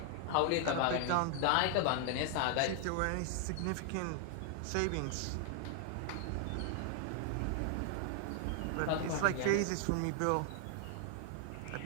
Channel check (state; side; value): different; both; correlation 0.00